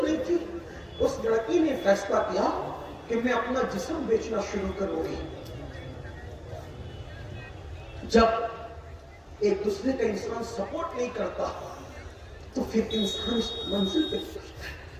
نہیں تھی۔ اس لڑکی نے فیصلہ کیا کہ میں اپنا جسم بیچنا شروع کروں گی۔ جب ایک دوسرے کا انسان سپورٹ نہیں کرتا تو پھر انسان اس منزل پہ پہنچتا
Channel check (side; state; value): both; identical; correlation 1.00